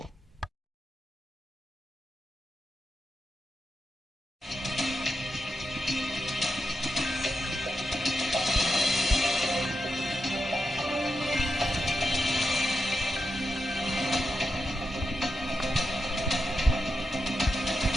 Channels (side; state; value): both; normal; correlation 0.87